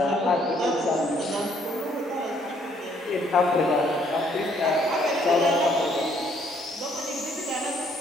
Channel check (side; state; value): both; normal; correlation 0.66